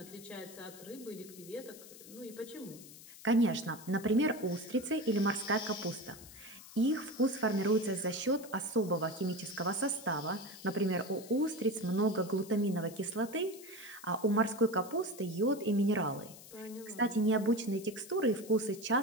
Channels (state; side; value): noise; left; hiss, 17 dB below the sound